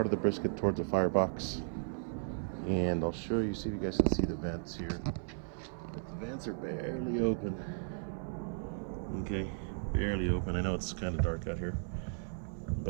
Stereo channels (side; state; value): left; silent; 54 dB below the other